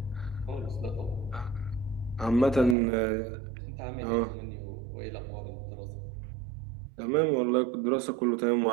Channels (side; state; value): left; drops out; at 2.8 s